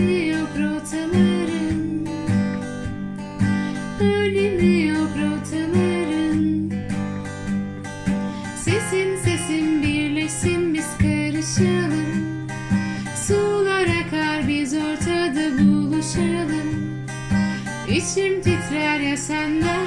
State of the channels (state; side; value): identical; both; correlation 1.00